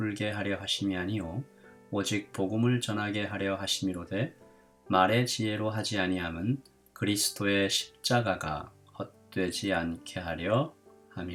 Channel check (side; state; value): both; identical; correlation 1.00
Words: 하려 하심이 아니요 오직 복음을 전하게 하려 하심이로되 말의 지혜로 하지 아니함은 그리스도의 십자가가 헛되지 않게 하려